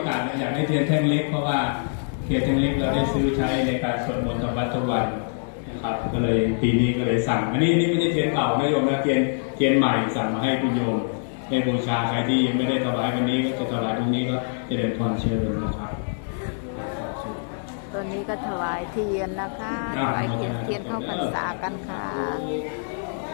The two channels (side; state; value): right; silent; digital silence